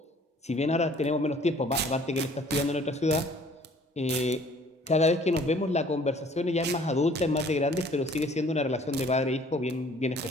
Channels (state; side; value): normal; both; correlation 0.55